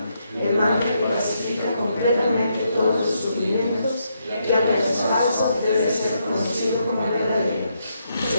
el mantra que pacifica completamente todos los sufrimientos, que aunque es falso, debe ser conocido como verdadero.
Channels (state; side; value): inverted; both; correlation -0.78